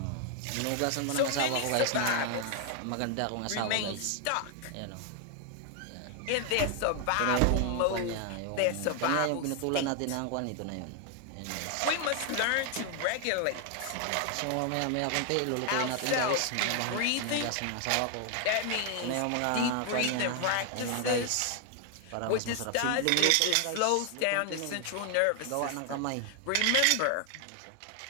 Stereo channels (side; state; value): both; different; correlation 0.00